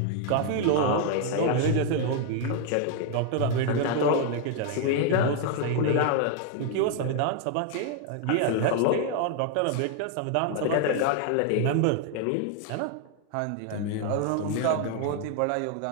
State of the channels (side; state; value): both; different; correlation 0.00